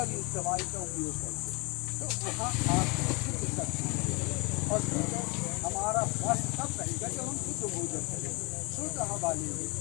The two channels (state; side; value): quieter; right; 28.2 dB